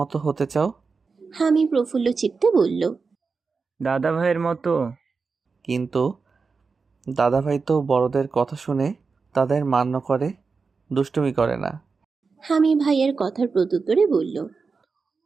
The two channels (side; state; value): left; quieter; 4.7 dB